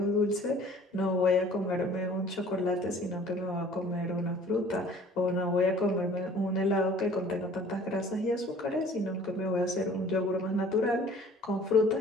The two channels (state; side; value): normal; both; correlation 0.51